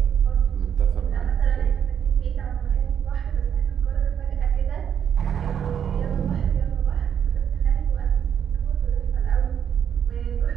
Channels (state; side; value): quieter; left; 8.4 dB